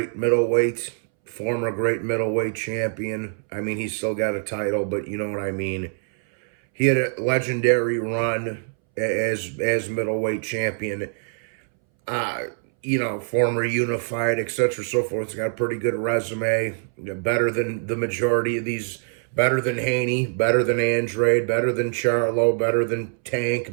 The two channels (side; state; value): left; silent; 63 dB below the other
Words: middleweight, former great middleweight champion. I mean, he's still got a title, but you know what I mean. He had a legendary run as middleweight champion. Uh, former unified, etc., so forth. He's got a pretty good resume. Better than the majority of these. Better than Haney. Better than Andrade. Better than Charlo. Better than